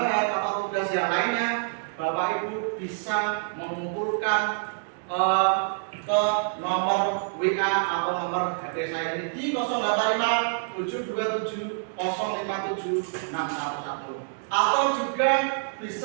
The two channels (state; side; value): silent; left; digital silence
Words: atau tugas yang lainnya, Bapak Ibu bisa mengumpulkan ke nomor WA atau nomor HP saya ini di 085 727 057 611, atau juga